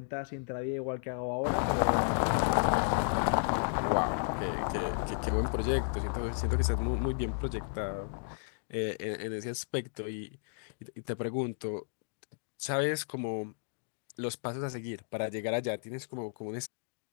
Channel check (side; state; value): right; silent; digital silence